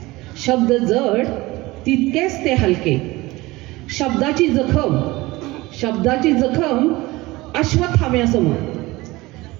शब्द जड, तितकेच ते हलके. शब्दाची जखम, शब्दाची जखम अश्वत्थाम्यासमोर.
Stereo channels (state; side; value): quieter; left; 20.5 dB